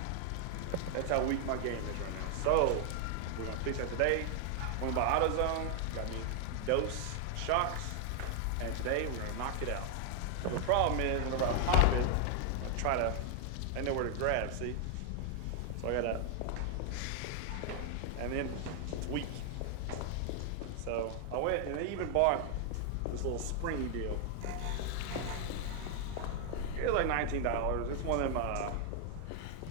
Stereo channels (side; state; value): both; different; correlation 0.00